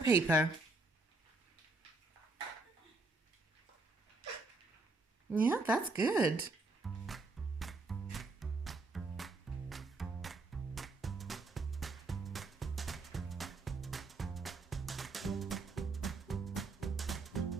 Yeah, that's good.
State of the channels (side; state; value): left; quieter; 3.5 dB